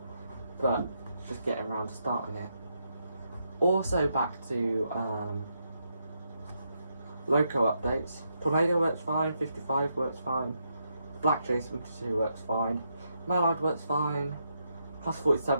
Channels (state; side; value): inverted; both; correlation -0.80